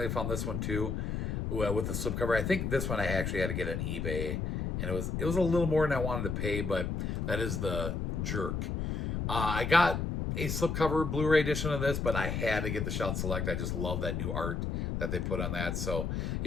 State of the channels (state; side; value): noise; left; rumble, 2 dB below the sound